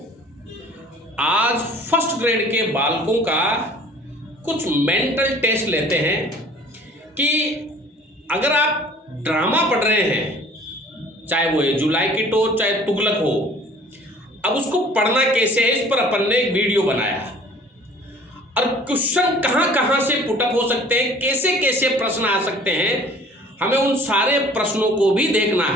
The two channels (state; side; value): normal; both; correlation 0.50